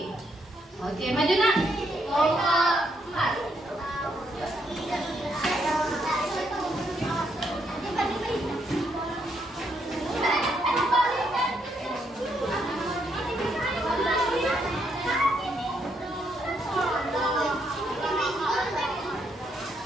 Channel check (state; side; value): normal; both; correlation 0.76